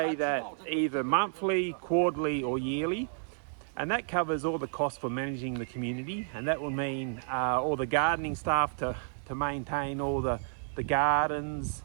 that either monthly, quarterly or yearly, and that covers all the costs for managing the community, and that will mean all the gardening staff to maintain all the gardens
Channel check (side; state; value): left; silent; digital silence